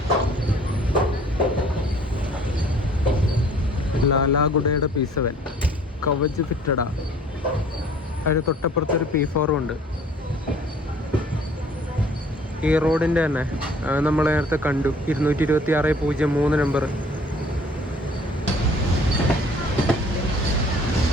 ലാലാഗുഡയുടെ P7 കവച് ഫിറ്റഡാ. അതിന് തൊട്ടപ്പുറത്തൊരു P4 ഉണ്ട്. ഈ റോഡിൻ്റെ തന്നെ നമ്മൾ നേരത്തെ കണ്ടു 226/03 നമ്പർ.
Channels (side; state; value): both; normal; correlation 0.54